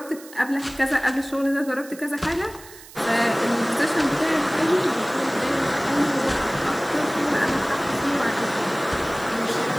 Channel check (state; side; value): noise; right; hiss, 19 dB below the sound